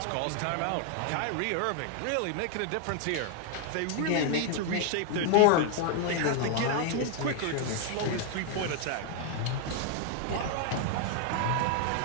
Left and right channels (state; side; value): different; both; correlation 0.00